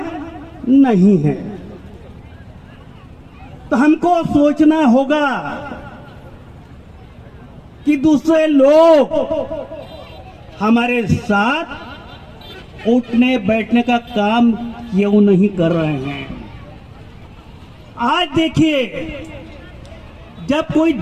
नहीं है। तो हमको सोचना होगा कि दूसरे लोग हमारे साथ उठने बैठने का काम क्यों नहीं कर रहे हैं? आज देखिए, जब कोई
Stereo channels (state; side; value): identical; both; correlation 1.00